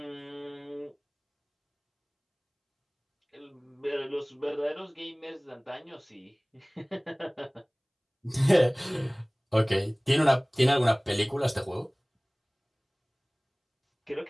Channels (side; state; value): both; identical; correlation 1.00